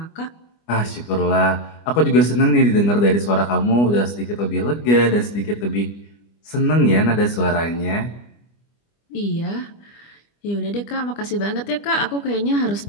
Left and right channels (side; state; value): right; late; 25 ms